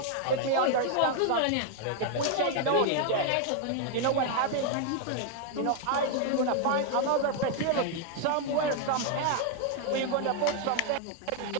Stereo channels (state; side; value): different; both; correlation 0.00